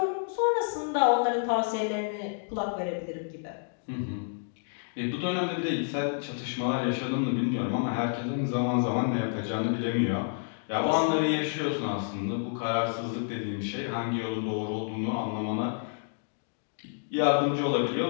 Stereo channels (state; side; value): silent; right; digital silence